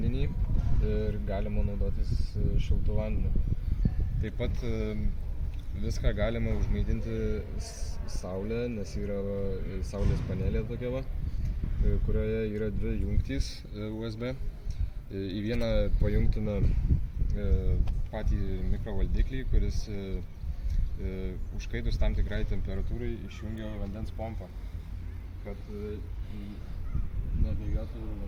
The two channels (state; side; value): identical; both; correlation 1.00